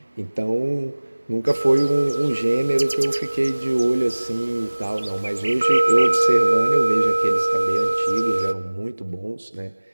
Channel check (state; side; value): inverted; both; correlation -1.00